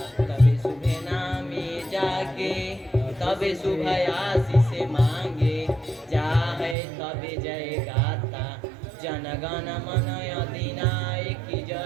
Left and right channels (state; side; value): drops out; left; at 6.8 s